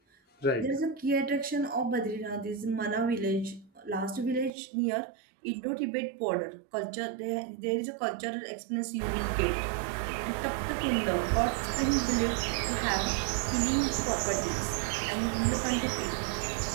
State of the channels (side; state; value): left; drops out; at 4.5 s